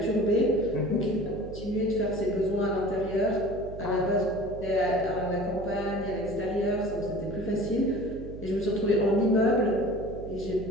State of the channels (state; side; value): noise; right; hum, 12 dB below the sound